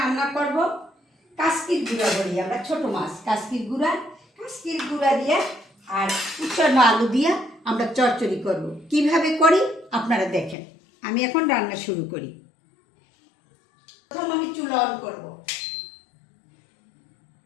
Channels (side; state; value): right; drops out; at 10.6 s